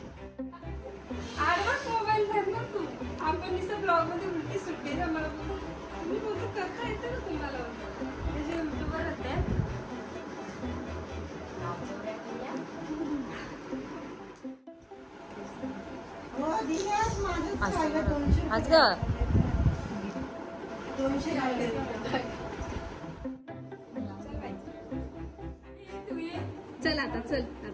मोबाईल धरला तू. आपण नुसतं ब्लॉग मध्ये उलटी सुट्टी मला मी बोलतो करता येतं ना तुम्हाला. त्याचे युट्यूबर होते. आज ग चल आता चल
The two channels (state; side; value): identical; both; correlation 1.00